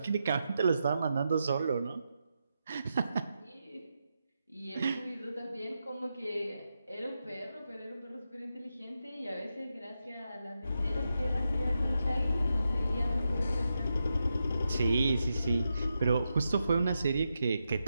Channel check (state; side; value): inverted; both; correlation -0.86